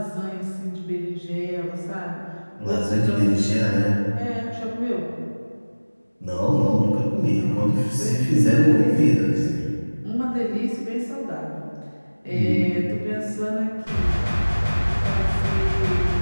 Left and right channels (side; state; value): both; inverted; correlation -1.00